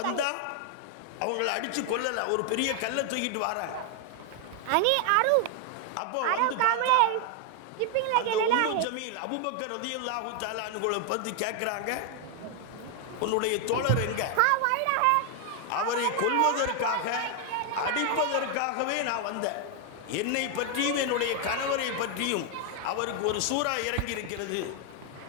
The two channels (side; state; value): both; different; correlation 0.00